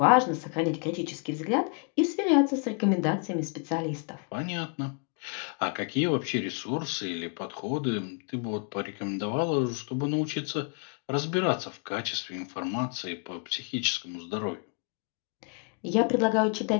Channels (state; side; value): quieter; right; 38.2 dB